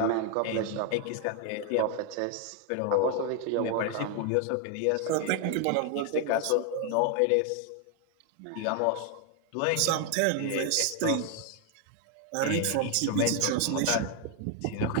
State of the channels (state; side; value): different; both; correlation 0.01